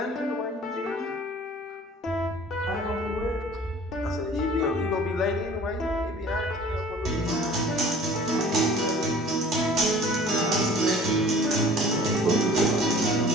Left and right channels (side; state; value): both; normal; correlation 0.48